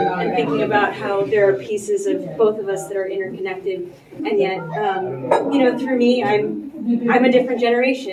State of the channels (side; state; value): both; identical; correlation 1.00